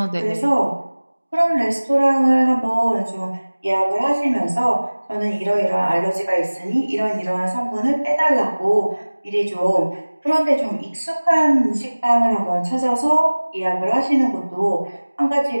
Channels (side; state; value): both; inverted; correlation -1.00